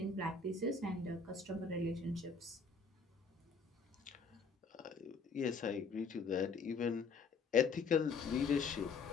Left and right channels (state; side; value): quieter; right; 4.7 dB